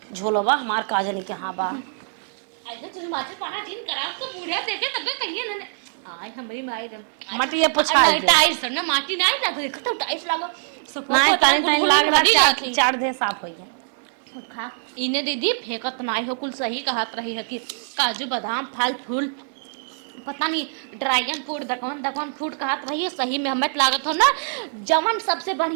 झोलवा हमार काजन के हां बा ऐसे तुझ माचर पाना जिन करा उनका बूढ़ा देखे तबे कहिए ना आय हमारी माई रे माटी ये पछा नहीं टाइल्स ना माटी नहीं लग देखो तो टाइल्स लगो सपोर्ट तो तरह गुलगुल में हदी जाती चार दे साफ होई है खा इने दीदी फेंकत नहीं हो कुल सही कहत रही है कि काजू बादाम फल फूल पता नहीं ड्रैगन फ्रूट दकवन फ्रूट कहत रही है सही में हमें लागत हो ना जवन सबसे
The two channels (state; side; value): silent; left; digital silence